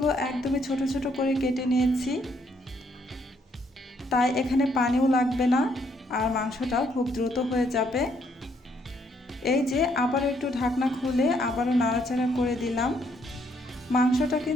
একদমই ছোট ছোট করে কেটে নিয়েছি, তাই এখানে পানিও লাগবে না আর মাংসটাও খুব দ্রুত হয়ে যাবে। এই যে আবারও একটু ঢাকনা খুলে আবারও নাড়াচাড়া করে দিলাম। মাংসটা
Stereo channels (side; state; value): both; normal; correlation 0.70